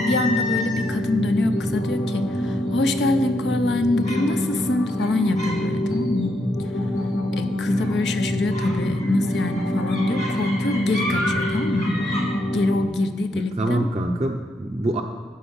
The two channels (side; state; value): both; normal; correlation 0.79